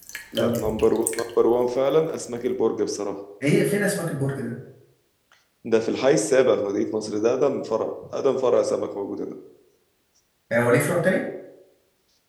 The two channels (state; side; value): identical; both; correlation 1.00